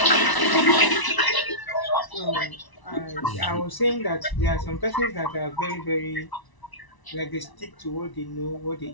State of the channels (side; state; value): right; late; 1.0 ms